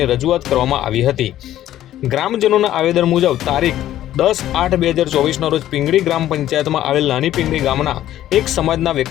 રજૂઆત કરવામાં આવી હતી। ગ્રામજનોના આવેદન મુજબ તારીખ 10/8/2024ના રોજ પિંગળી ગ્રામ પંચાયતમાં આવેલ નાની પિંગળી ગામના એક સમાજના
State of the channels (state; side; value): quieter; right; 12.8 dB